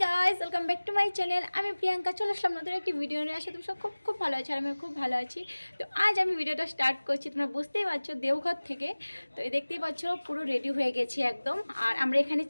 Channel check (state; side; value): inverted; both; correlation -1.00